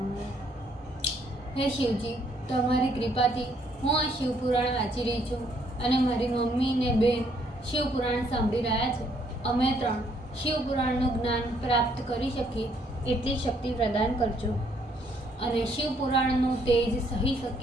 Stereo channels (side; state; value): both; normal; correlation 0.68